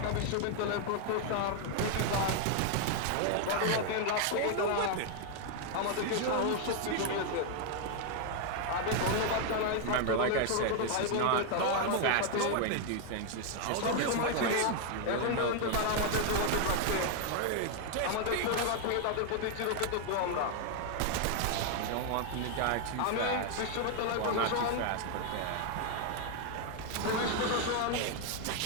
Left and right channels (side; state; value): both; different; correlation 0.00